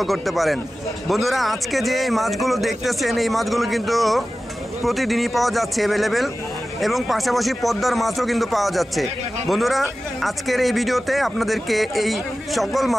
করতে পারেন। বন্ধুরা, আজকে যে মাছগুলো দেখতেছেন এই মাছগুলো কিন্তু প্রতিদিনই পাওয়া যাচ্ছে অ্যাভেলেবেল, এবং পাশাপাশি পদ্মার মাছও কিন্তু পাওয়া যাচ্ছে। বন্ধুরা, আজকের এই ভিডিওতে আপনাদেরকে এই সকল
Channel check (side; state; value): both; normal; correlation 0.95